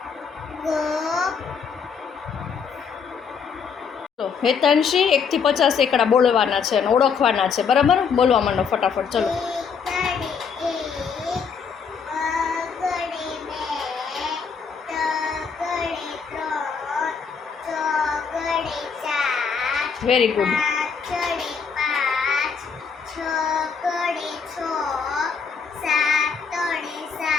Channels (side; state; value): right; quieter; 6.1 dB